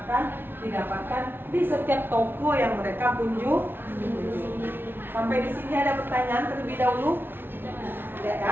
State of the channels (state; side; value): late; left; 0.10 ms